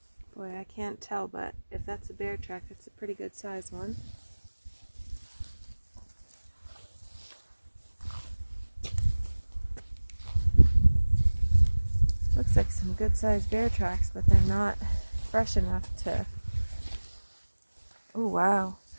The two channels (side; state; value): both; inverted; correlation -1.00